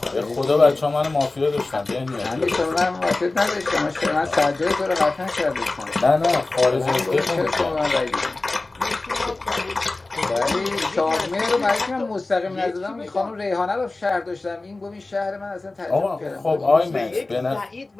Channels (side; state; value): right; quieter; 3.2 dB